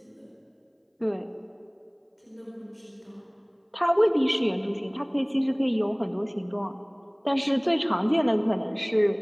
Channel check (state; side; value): identical; both; correlation 1.00